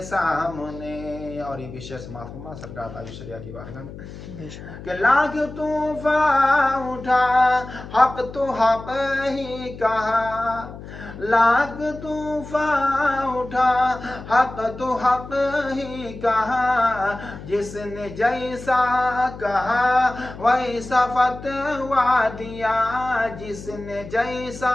سامنے۔ اور یہ بھی شعر سماعت فرما سرکار تاج شریعہ کی بارگاہ میں کہ لاکھ طوفان اٹھا حق تو حق ہی کہا، لاکھ طوفان اٹھا حق تو حق ہی کہا، جس نے جیسا کہا ویسا فتویٰ دیا، جس نے جیسا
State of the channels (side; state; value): left; noise; hum, 13 dB below the sound